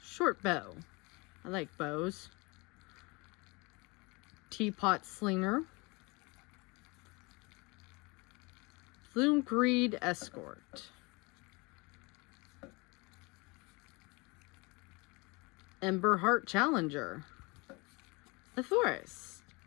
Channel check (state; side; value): quieter; right; 26.9 dB